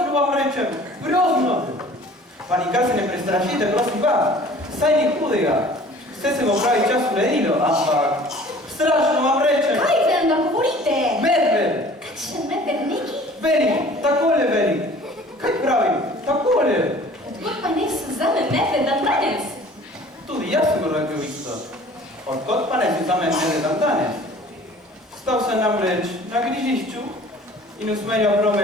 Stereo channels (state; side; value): normal; both; correlation 0.48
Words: vam rečem, grozno! Pa nikar se ne prestrašite, prosim pa, saj ni hudega. Vse se bo pravi čas uredilo, ampak strašno vam rečem. Kaj vam da govorite? Medved! Kakšen medved neki? Veli, takole veli. Kaj pravim? Takole. Odkot pa ne se zame medved dan danes? Tudi jaz sem rekel isto. Odkot pa ne se zame medved dan danes? Stal sem namreč na križišču in usmerjal